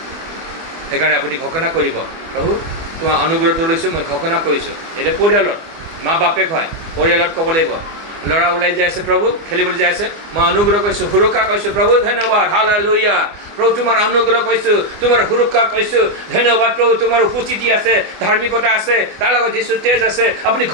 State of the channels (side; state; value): left; late; 24 ms